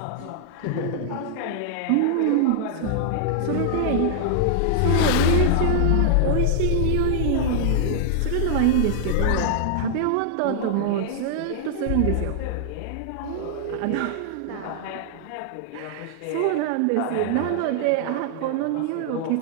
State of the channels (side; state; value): both; different; correlation -0.01